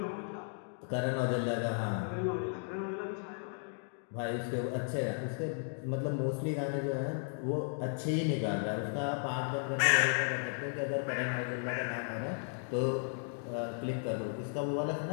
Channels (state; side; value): silent; right; 54 dB below the other